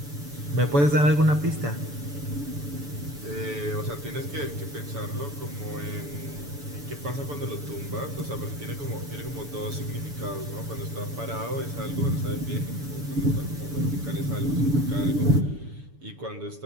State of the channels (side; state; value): left; late; 6.9 ms